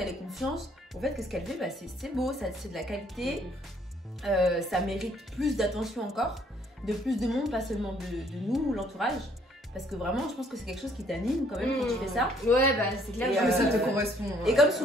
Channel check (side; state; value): both; normal; correlation 0.64